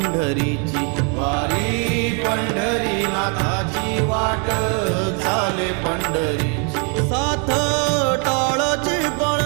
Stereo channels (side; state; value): left; quieter; 37.7 dB